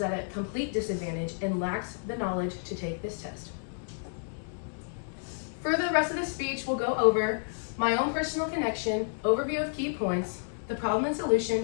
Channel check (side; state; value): right; silent; digital silence